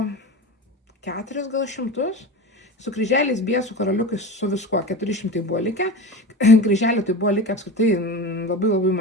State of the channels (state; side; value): normal; both; correlation 0.29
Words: 4 gal šimtus. Su kryželiais, biesų, karaliukais, su viskuo 400 buvo likę. Kryželių tai buvo likę apskritai labai